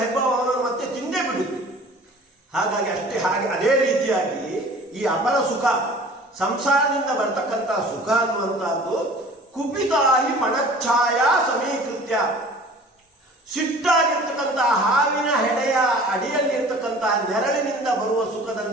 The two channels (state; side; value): normal; both; correlation 0.46